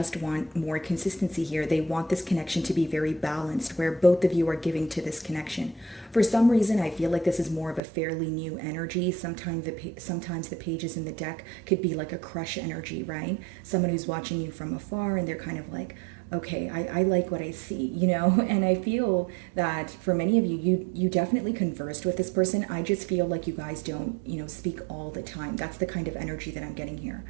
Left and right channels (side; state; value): left; drops out; at 7.8 s